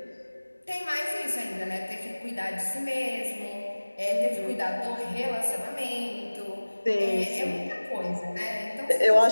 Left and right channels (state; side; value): inverted; both; correlation -1.00